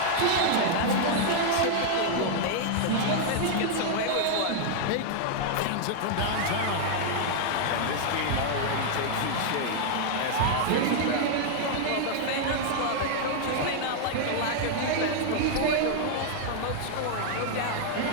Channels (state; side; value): different; both; correlation -0.01